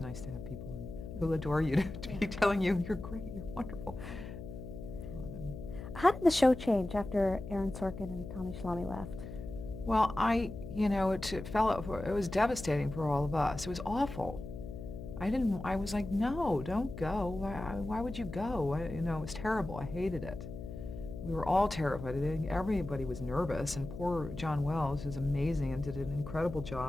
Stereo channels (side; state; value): left; noise; hum, 10 dB below the sound